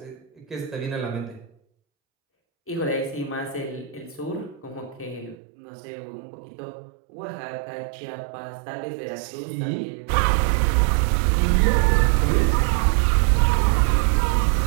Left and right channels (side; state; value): left; drops out; at 5.4 s